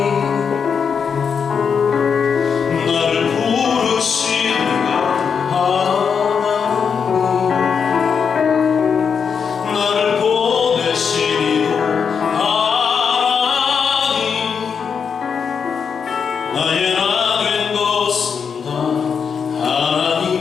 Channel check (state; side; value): quieter; right; 6.4 dB